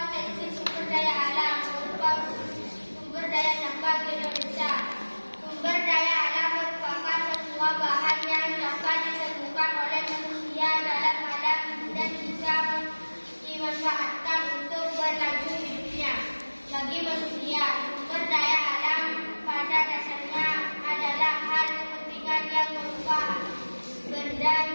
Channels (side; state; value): both; inverted; correlation -1.00